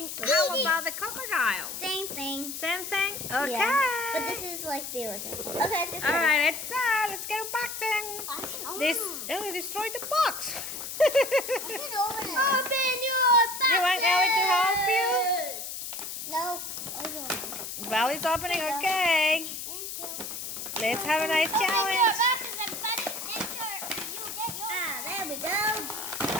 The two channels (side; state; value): left; noise; hiss, 7 dB below the sound